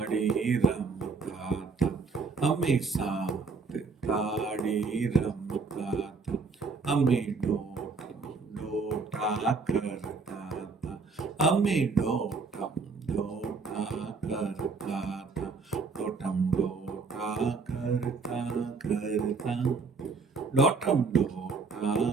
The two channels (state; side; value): quieter; left; 4.5 dB